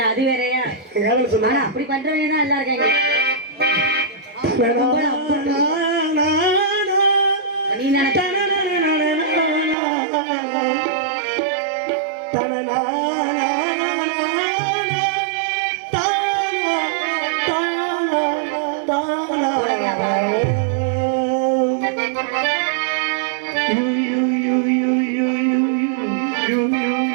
அது வேறயா. ஆனா அப்படி பண்றவங்க தான் எல்லாம் இருக்காங்க. நீ நினைச்ச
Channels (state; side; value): drops out; left; at 9.8 s